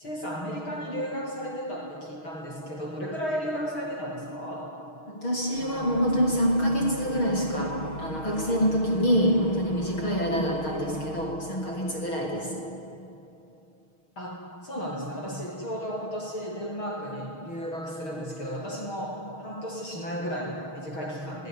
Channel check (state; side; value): late; right; 6.4 ms